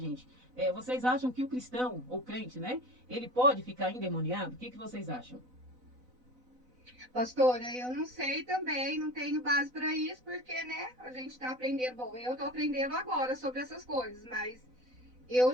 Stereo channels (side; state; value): left; late; 4.0 ms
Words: Vocês acham que o cristão, ou crente, né? Ele pode ficar endemoniado? O que vocês acham? Pastora, eu não sei também, não tenho base para isso, porque, né, a gente está aprendendo, bom, eu estou aprendendo agora sobre essas coisas, mas eu